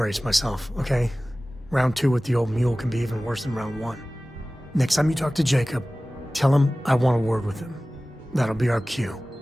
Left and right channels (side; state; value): both; normal; correlation 0.97